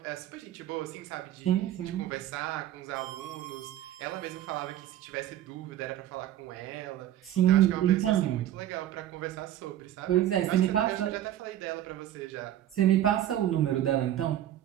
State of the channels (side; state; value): left; quieter; 12.4 dB